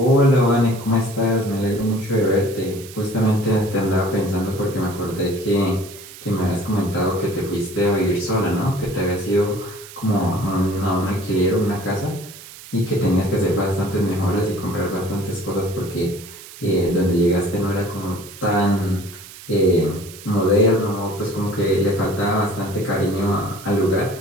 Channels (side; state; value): right; noise; hiss, 17 dB below the sound